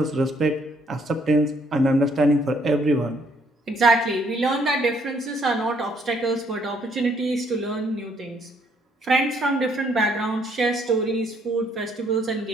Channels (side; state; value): both; normal; correlation 0.67